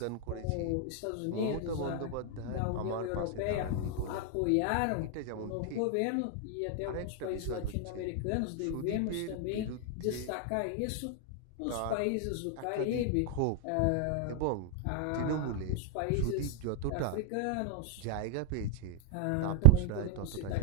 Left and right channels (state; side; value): different; both; correlation 0.00